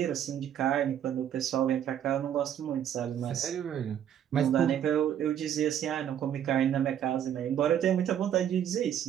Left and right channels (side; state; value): left; quieter; 9.9 dB